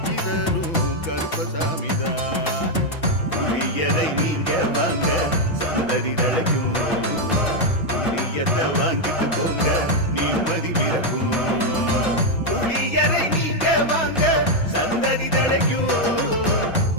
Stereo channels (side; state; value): right; late; 5.9 ms